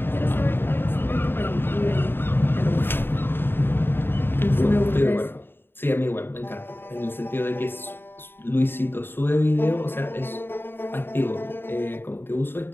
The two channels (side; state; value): right; late; 0.10 ms